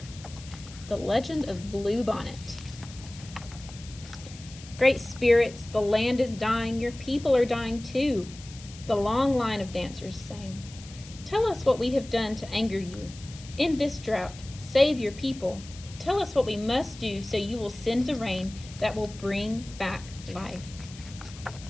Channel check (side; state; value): left; noise; hiss, 18 dB below the sound